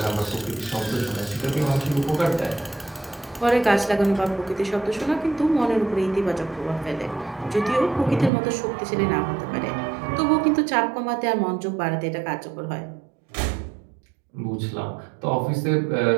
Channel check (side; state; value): left; drops out; at 8.3 s